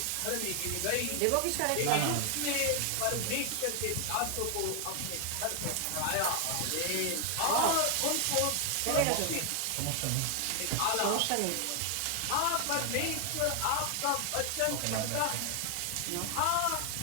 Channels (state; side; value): different; both; correlation 0.00